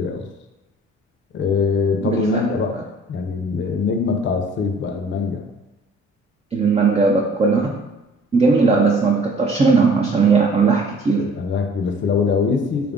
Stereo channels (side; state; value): both; normal; correlation 0.52